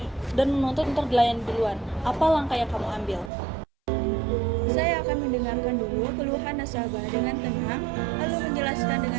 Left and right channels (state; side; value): drops out; left; at 3.3 s